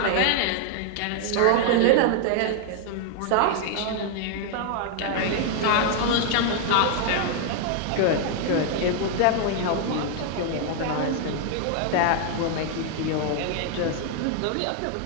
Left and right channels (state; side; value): different; both; correlation 0.00